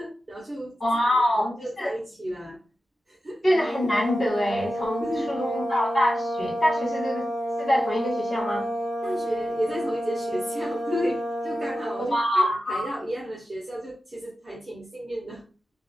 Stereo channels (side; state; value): both; normal; correlation 0.92